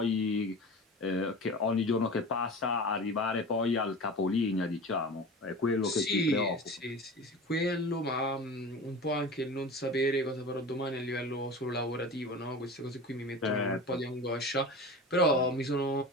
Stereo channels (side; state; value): both; normal; correlation 0.33